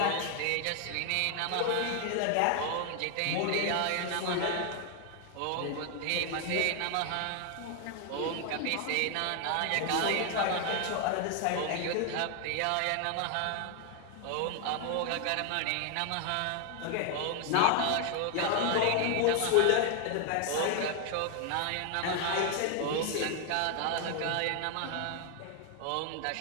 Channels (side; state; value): both; different; correlation 0.00